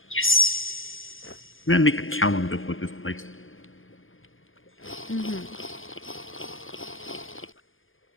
Yes. gonna make a calendar with this place. Mm-hmm.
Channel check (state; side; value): late; right; 0.59 ms